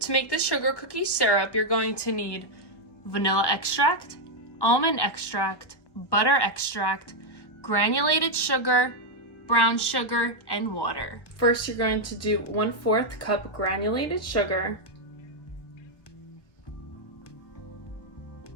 make the sugar cookie syrup, you're going to need vanilla extract, almond extract, butter extract, granulated sugar, brown sugar, and water. First, you're going to do 1/4 cup granulated sugar,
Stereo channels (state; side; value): late; right; 1.1 ms